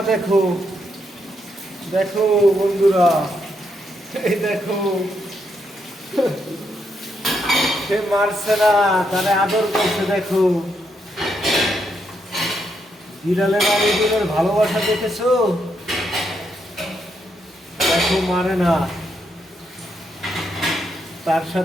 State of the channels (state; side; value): normal; both; correlation 0.79